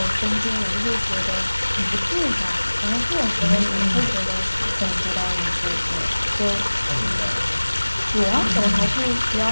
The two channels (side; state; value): both; inverted; correlation -1.00